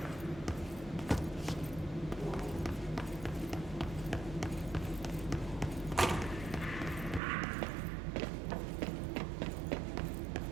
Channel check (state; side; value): drops out; left; at 7.2 s